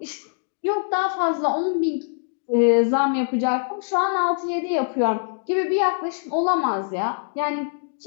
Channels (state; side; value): silent; right; digital silence